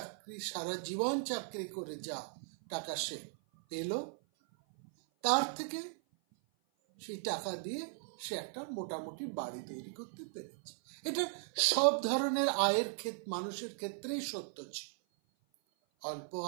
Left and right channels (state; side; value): silent; left; 53 dB below the other